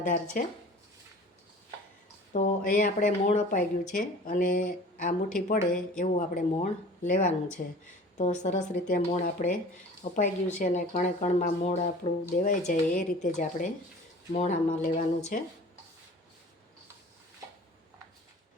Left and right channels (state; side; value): normal; both; correlation 0.44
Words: છે. તો અહીંયા આપણે મોણ અપાઈ ગયું છે અને આ મુઠ્ઠી પડે એવું આપણે મોણ લેવાનું છે. તો સરસ રીતે મોણ આપણે અપાઈ ગયું છે અને કણે કણમાં મોણ આપણું દેવાઈ જાય એ રીતે જ આપણે મોણ આમાં લેવાનું છે.